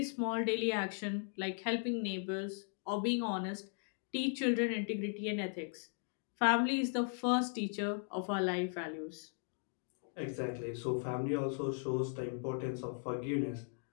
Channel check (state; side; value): silent; right; 53 dB below the other